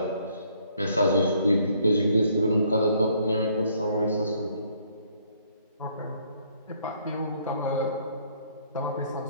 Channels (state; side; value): inverted; both; correlation -0.65